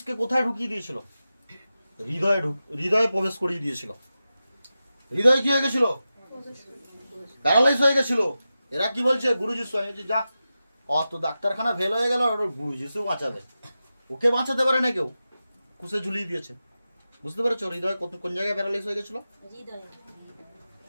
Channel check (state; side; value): inverted; both; correlation -0.93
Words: কোথায় ঢুকিয়ে দিয়েছিল? হৃদয়ে প্রবেশ করিয়ে দিয়েছিল। হৃদয়ে কি হয়ে গেছিল? প্যারালাইজ হয়ে গেছিল। এরা কি বলছে? গুরু যিশু। আমি বলছি যা, অত ডাক্তারখানা ফেল হয়ে গেল, গুরু যিশু বাঁচাবে। ওকে বাঁচাতে পারে না কেউ, কুশে ঝুলিয়ে দিয়েছে। বুঝতে পেরেছো হৃদয় কোন জায়গায় প্যারালাইজ হয়ে গেছিল?